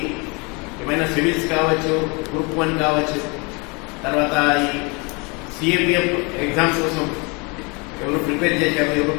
ఏమైనా సివిల్స్ కావచ్చు, గ్రూప్ 1 కావచ్చు, తర్వాత ఈ సిఏపిఎఫ్ ఎగ్జామ్స్ కోసం ఎవరు ప్రిపేర్ చేశారు, ఎవరు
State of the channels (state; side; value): quieter; right; 29.8 dB